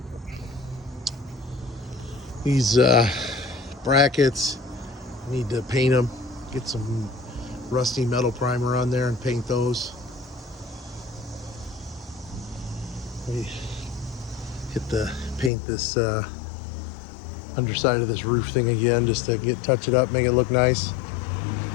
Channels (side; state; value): right; drops out; at 15.5 s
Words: These brackets, need to paint them, get some rusty metal primer on there and paint those. We paint this underside of this roof thing again, just to touch it up, make it look nice.